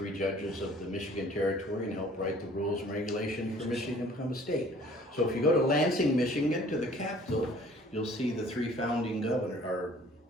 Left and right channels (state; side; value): normal; both; correlation 0.53